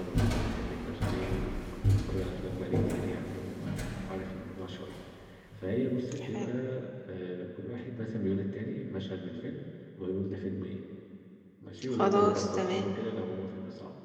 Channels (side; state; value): both; identical; correlation 1.00